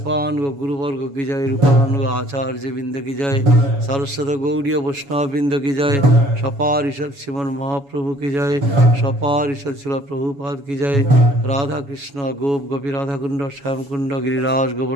गुरु वर्ग की जय। रूपान आचार्य बिंद की जय। सरस्वत गौड़ीय वैष्णव बिंद की जय। सपारिषद श्रीमन महाप्रभु की जय। सपारिषद शिला प्रभुपाद की जय। राधा कृष्ण गोप गोपी राधा कुंड श्याम कुंड गिरिराज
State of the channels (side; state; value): left; late; 7.2 ms